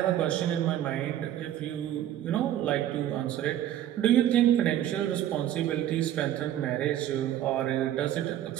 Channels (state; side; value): quieter; left; 11.8 dB